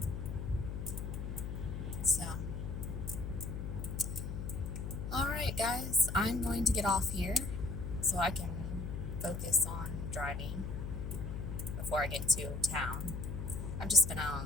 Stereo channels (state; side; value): noise; left; hum, 5 dB below the sound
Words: So, alright guys, I'm going to get off here so I can focus on driving before I get to town. I've just been out